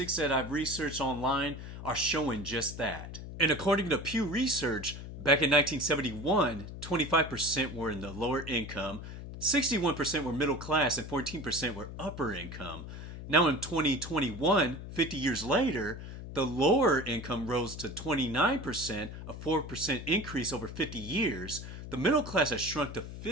that I've researched online are showing just that. And according to Pew Research, back in 1971, 25% were in the lower income, 61% were middle class, and 14% were upper income. Now in 2021, 50 years later, the lower income rose to 29%, a 4% increase over 50 years. The middle class has shrunk to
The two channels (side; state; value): left; noise; hum, 10 dB below the sound